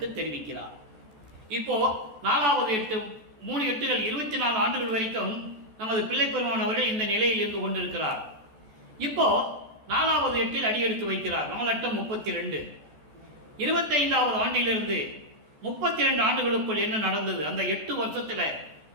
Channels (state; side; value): late; left; 14 ms